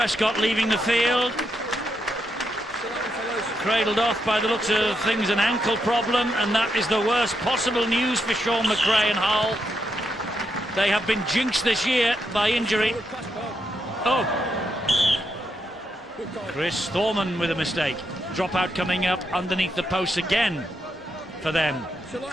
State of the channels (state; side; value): normal; both; correlation 0.81